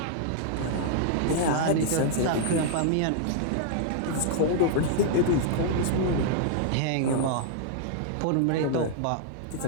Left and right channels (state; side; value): different; both; correlation -0.01